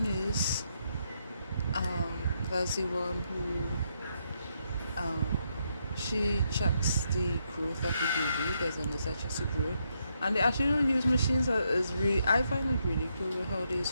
nurse, that's the one who she checks the growth of the baby. There's a nurse that checks the growth, and they actually don't use machines. Is really, I find it really cool how they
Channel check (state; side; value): inverted; both; correlation -0.78